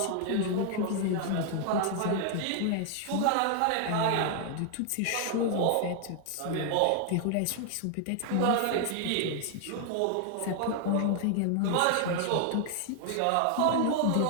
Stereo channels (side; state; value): both; different; correlation 0.00